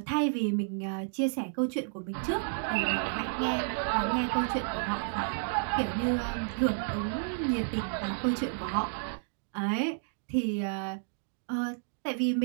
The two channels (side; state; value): left; silent; digital silence